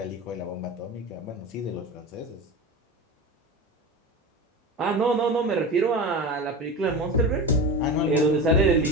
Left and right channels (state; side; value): normal; both; correlation 0.26